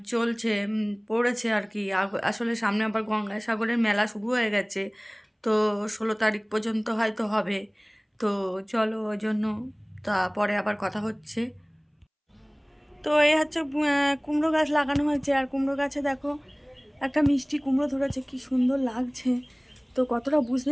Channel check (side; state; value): both; identical; correlation 1.00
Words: চলছে, পড়েছে আর কি। আসলে সামনে আবার গঙ্গাসাগরের মেলা শুরু হয়ে গেছে, তো 16 তারিখ পর্যন্ত হয়তো হবে। তো চলো, ওই জন্য তারপরে আবার কথা হচ্ছে। তো এই হচ্ছে কুমড়ো গাছ লাগানো হয়েছে, আর কুমড়ো গাছে দেখো একটা মিষ্টি কুমড়ো ধরেছে, কি সুন্দর লাগছে। তো কতটা